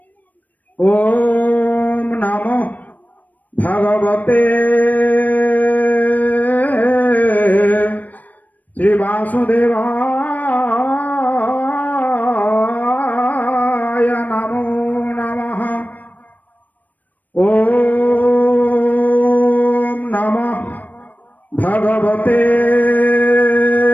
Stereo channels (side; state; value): right; late; 0.081 ms